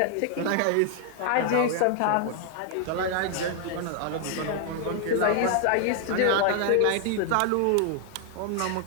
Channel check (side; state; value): both; different; correlation 0.00